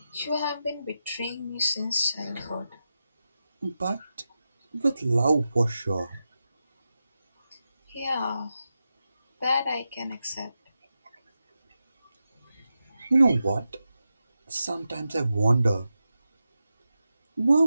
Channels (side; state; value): both; inverted; correlation -0.91